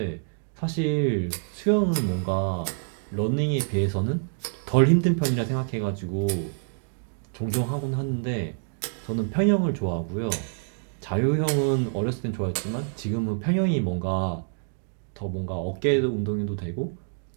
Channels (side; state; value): left; silent; 60 dB below the other